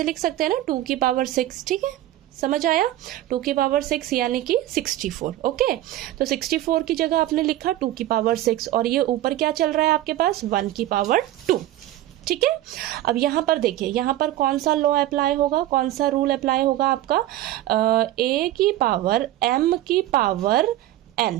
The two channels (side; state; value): left; quieter; 14.2 dB